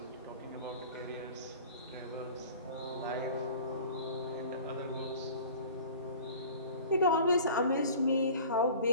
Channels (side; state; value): both; inverted; correlation -0.44